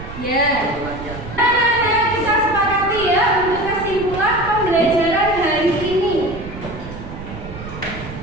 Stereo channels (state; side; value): noise; right; rumble, 12 dB below the sound